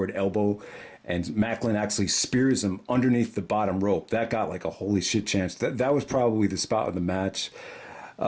elbow, and Maclin actually spears him underneath the bottom rope. That got like a holy shit chance. That was probably the spot of the match.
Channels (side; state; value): both; identical; correlation 1.00